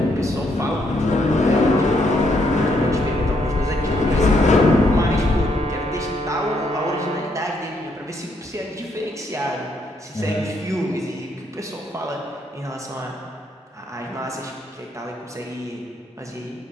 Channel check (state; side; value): normal; both; correlation 0.74